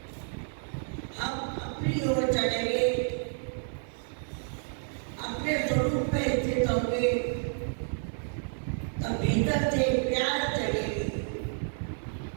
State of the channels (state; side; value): silent; left; 58 dB below the other